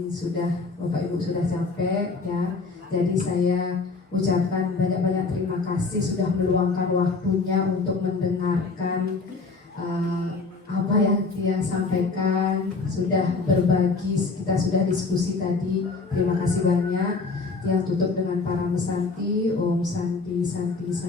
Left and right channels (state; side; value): quieter; right; 4.1 dB